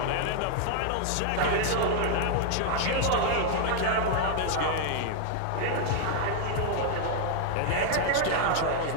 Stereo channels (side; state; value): both; different; correlation 0.00